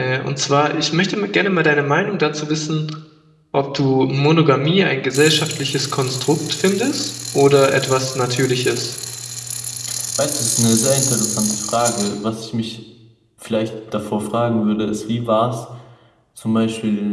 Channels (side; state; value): both; identical; correlation 1.00